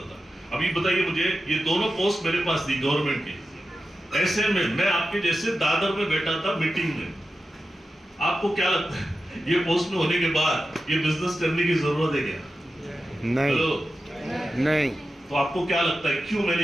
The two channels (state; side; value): normal; both; correlation 0.91